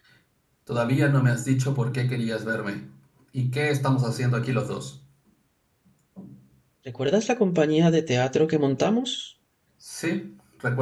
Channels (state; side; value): identical; both; correlation 1.00